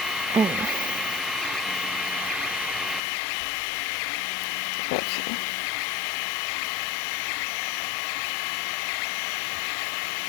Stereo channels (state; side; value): drops out; right; at 3.0 s